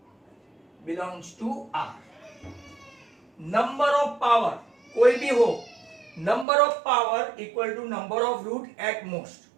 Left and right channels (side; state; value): left; drops out; at 6.5 s